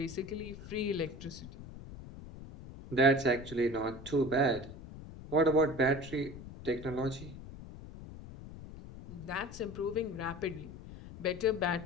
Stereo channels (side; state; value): left; noise; rumble, 14 dB below the sound